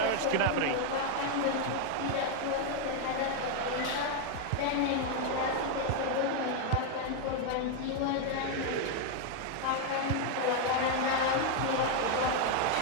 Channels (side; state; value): both; different; correlation 0.01